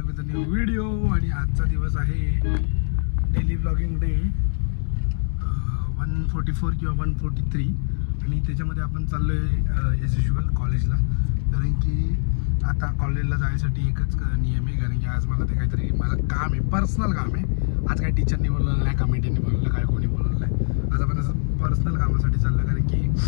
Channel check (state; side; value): silent; right; 63 dB below the other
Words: with a new video. आणि आजचा दिवस आहे डेली ब्लॉगिंग डे 144 किंवा 143. आणि त्याच्यामध्ये आपण चाललो आहे ॲज युजल कॉलेजला. कारण की आता कॉलेजला जायसाठी एकच नियम आहे, कारण की आज मला ते काहीतरी मला काम आहे, पर्सनल काम आहे. आज काही टीचरनी बोलवलं नाही, कमिटीने बोलवलं काय, कोणी बोलवलं नाही. आज आपण असं पर्सनल कामासाठी चाललं, कारण